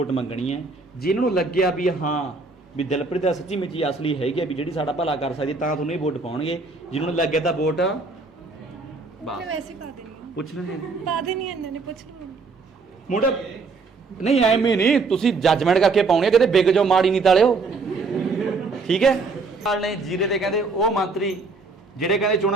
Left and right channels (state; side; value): quieter; left; 4.1 dB